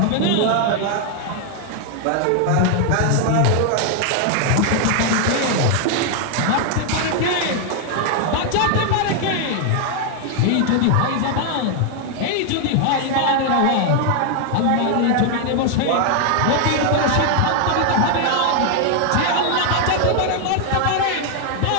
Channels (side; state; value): both; different; correlation 0.00